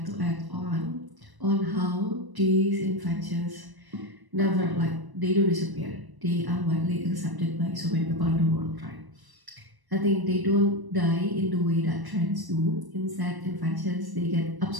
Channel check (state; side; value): late; left; 1.0 ms